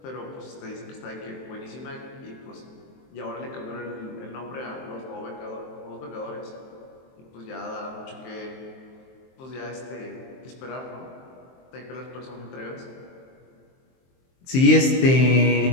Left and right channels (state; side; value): late; right; 23 ms